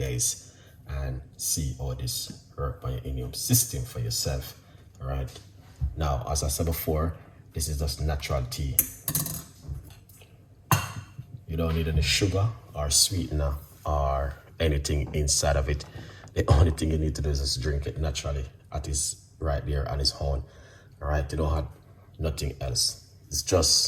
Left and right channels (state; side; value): identical; both; correlation 1.00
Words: and see how this work by your immune system for yourself. All right. Now, as I said before, this is just natural tea. You don't need any sugar or sweetener or anything inside of it. The only thing you need to do is just drink it naturally at its right there on its own. All right, you don't have nothing else. It's